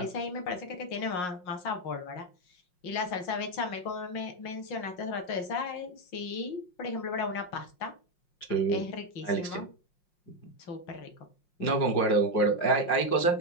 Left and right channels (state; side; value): late; right; 5.6 ms